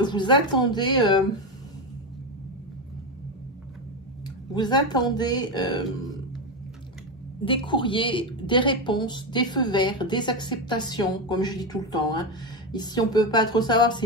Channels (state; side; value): normal; both; correlation 0.13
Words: vous attendez des courriers, des réponses, des feux verts, des acceptations, comme je dis tout le temps, hein. Ici, on ne peut pas trop savoir, c'est